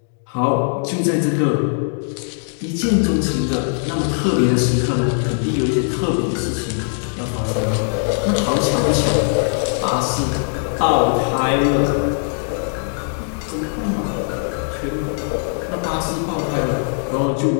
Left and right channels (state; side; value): silent; right; digital silence